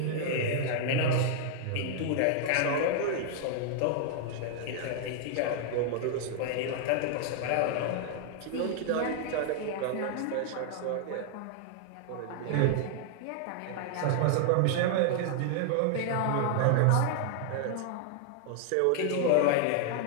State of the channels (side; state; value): both; different; correlation 0.00